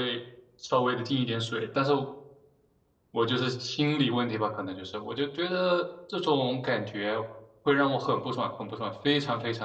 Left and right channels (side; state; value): both; identical; correlation 1.00